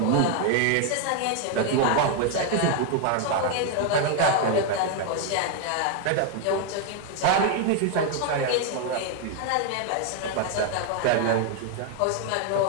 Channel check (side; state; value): both; different; correlation 0.01